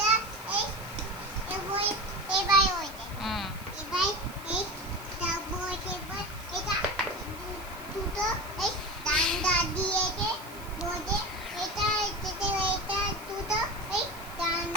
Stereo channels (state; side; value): noise; right; hiss, 18 dB below the sound